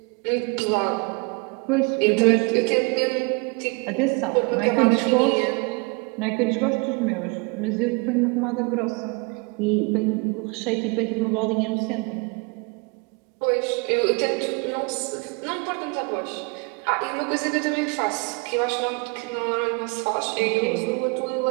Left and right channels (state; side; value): quieter; left; 30.7 dB